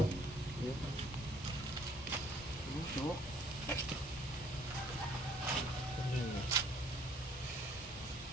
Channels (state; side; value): normal; both; correlation 0.59